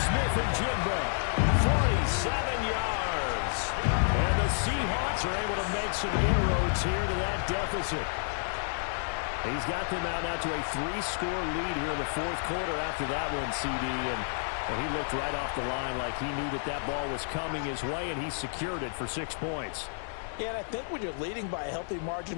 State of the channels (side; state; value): right; silent; 58 dB below the other